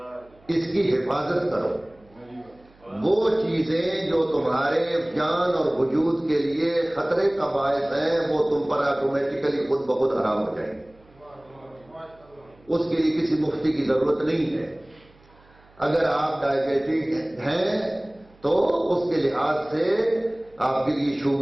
اس کی حفاظت کرو. وہ چیزیں جو تمہارے جان اور وجود کے لیے خطرے کا باعث ہیں وہ تم پر آٹومیٹیکلی خود بخود حرام ہو جائیں گے. اس کے لیے کسی مفتی کی ضرورت نہیں ہے. اگر آپ ڈائبیٹک ہیں تو اس کے لحاظ سے آپ کے لیے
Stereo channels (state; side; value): noise; right; hum, 29 dB below the sound